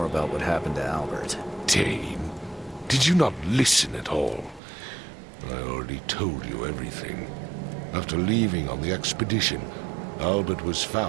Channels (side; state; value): left; drops out; at 4.6 s